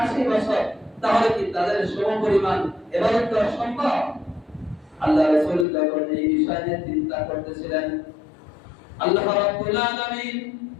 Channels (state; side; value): drops out; right; at 5.7 s